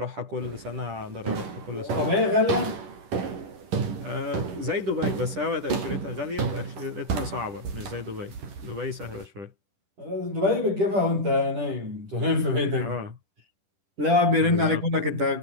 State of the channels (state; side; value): late; left; 11 ms